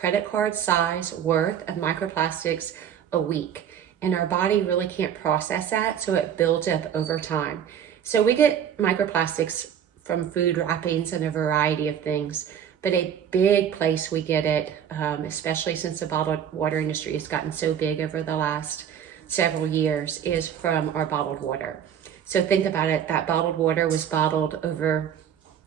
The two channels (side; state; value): left; quieter; 8.9 dB